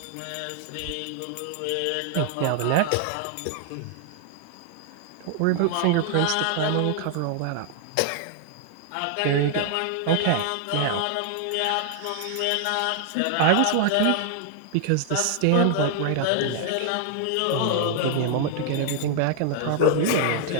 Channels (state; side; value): different; both; correlation 0.00